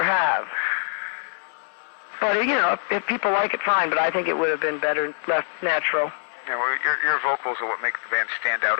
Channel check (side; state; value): right; silent; 62 dB below the other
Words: have. But, you know, if people like it, fine, but I think it would have been better left natural. Yeah, well, your vocals are what make the band stand out